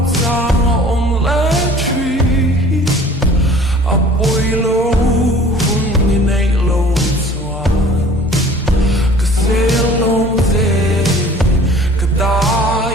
giang om lẽ truy a bôi lâu hun ni nay lâu xoan cái xe lâu dê cái ta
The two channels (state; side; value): normal; both; correlation 0.48